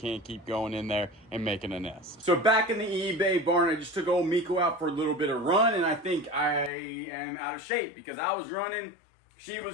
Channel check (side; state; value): right; drops out; at 6.7 s